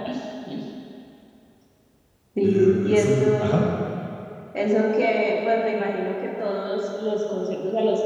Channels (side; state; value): both; identical; correlation 1.00